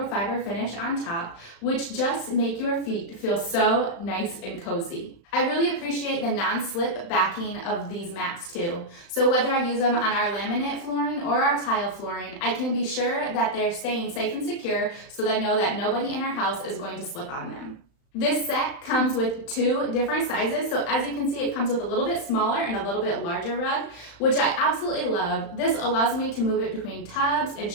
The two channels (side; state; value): right; late; 35 ms